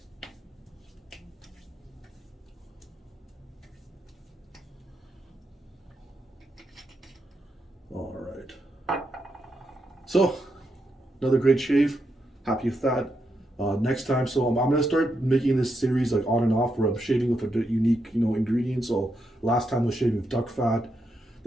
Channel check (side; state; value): both; normal; correlation 0.83